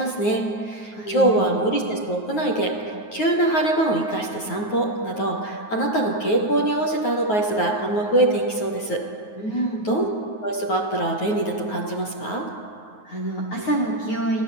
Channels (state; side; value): late; right; 9.4 ms